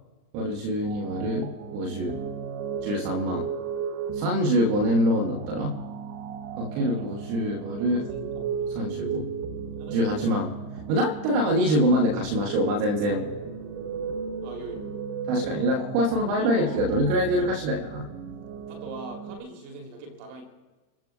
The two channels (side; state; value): left; late; 39 ms